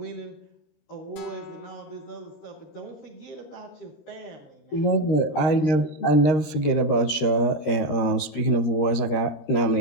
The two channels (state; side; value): late; right; 13 ms